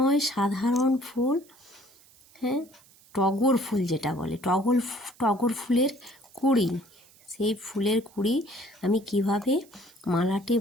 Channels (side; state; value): right; noise; hiss, 27 dB below the sound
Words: সাধারণ ফুল। হ্যাঁ, টগর ফুল যেটা বলে, টগর ফুলের কুঁড়ি। সেই ফুলের কুঁড়ি আমি কিভাবে মালাটি